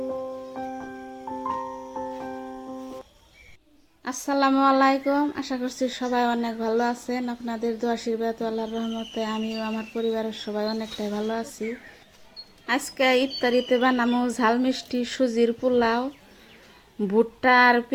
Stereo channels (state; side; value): identical; both; correlation 1.00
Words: আসসালামু আলাইকুম, আশা করছি সবাই অনেক ভালো আছেন। আপনাদের দোয়া আশীর্বাদ আল্লাহর রহমতে আমিও আমার পরিবারের সবাই অনেকটাই ভালো আছি। আজকে ইফতারিতে বানামো ঝাল মিষ্টি সুজির পোলাও, ভুট্টা আর